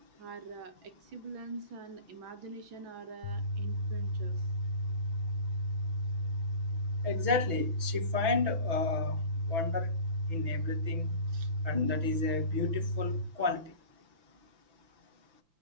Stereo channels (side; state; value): left; late; 6.0 ms